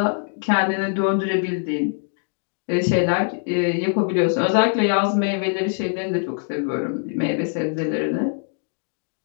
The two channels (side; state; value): right; silent; 64 dB below the other